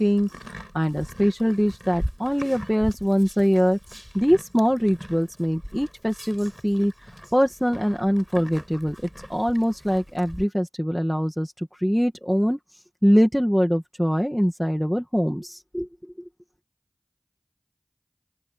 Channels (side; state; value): both; identical; correlation 1.00